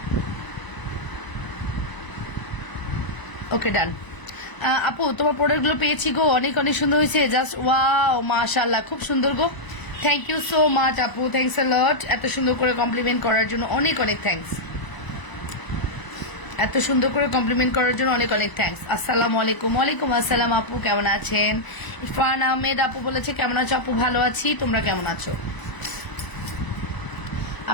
ওকে ডান। আপু তোমার প্রোডাক্টগুলো পেয়েছি গো, অনেক অনেক সুন্দর হয়েছে, জাস্ট ওয়াও মাশাআল্লাহ, খুব সুন্দর গো। থ্যাংক ইউ সো মাচ আপু, থ্যাংকস আ লট। এত সুন্দর করে কমপ্লিমেন্ট করার জন্য অনেক অনেক থ্যাঙ্কস। এত সুন্দর করে কমপ্লিমেন্ট করার জন্য অনেক অনেক থ্যাঙ্কস। আসসালামু আলাইকুম। ওয়ালাইকুম আসসালাম আপু, কেমন আছেন? ইরফান আহমেদ আপু বলেছে কেমন আছো আপু? ভালো আছি, তোমরা কেমন আছো?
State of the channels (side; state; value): right; late; 1.0 ms